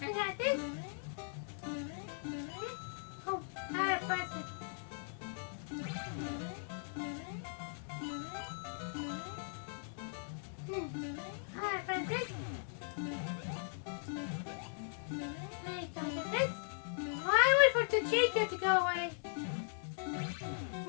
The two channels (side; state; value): right; silent; digital silence